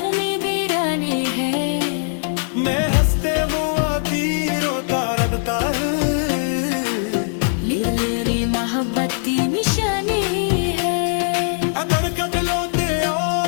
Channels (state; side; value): silent; right; 65 dB below the other